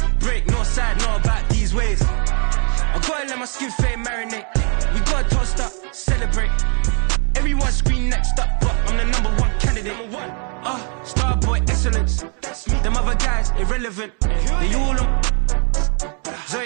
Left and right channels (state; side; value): quieter; left; 38.7 dB